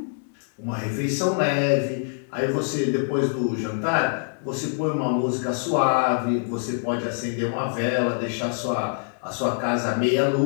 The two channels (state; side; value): silent; right; 62 dB below the other